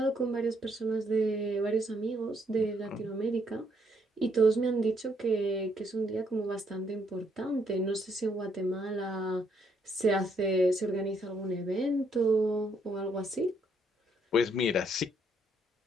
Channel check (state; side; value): normal; both; correlation 0.71